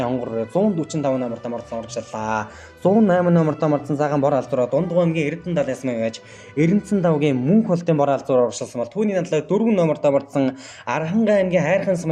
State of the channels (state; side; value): identical; both; correlation 1.00